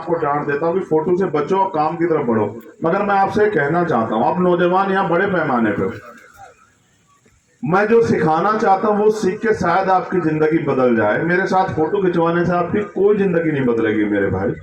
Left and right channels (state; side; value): identical; both; correlation 1.00